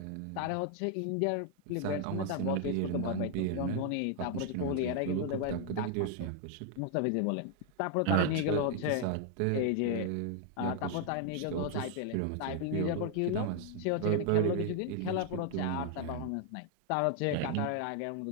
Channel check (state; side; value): different; both; correlation 0.00